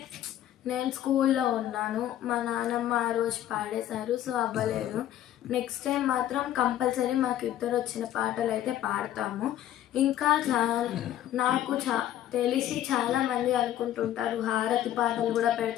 నేను స్కూల్లో ఉన్నాను, మా నాన్నమ్మ ఆ రోజు పాడేశారు, సో అవ్వలేదు. నెక్స్ట్ టైం మాత్రం కంపల్సరీ మాకు ఇద్దరు వచ్చిన పాటలు అయితే పాడతాము. ఇంకా నాకు తెలిసి చాలామంది అనుకుంటుంటారు హారతి పాటలు కూడా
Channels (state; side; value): quieter; right; 12.2 dB